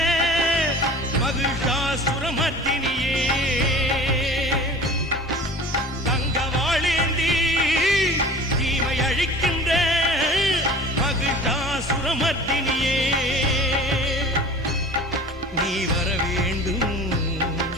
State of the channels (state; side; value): normal; both; correlation 0.41